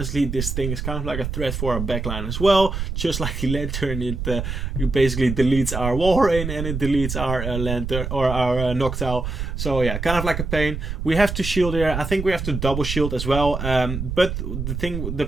this thing is kind of like a threat for our backline as well. Just like the lantern, it basically deletes our Warren and it deletes our lantern or our Noctowl. So yeah, kind of like a pain. We have to shield here. I think we have to double shield as well. But the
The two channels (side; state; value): right; noise; rumble, 4 dB below the sound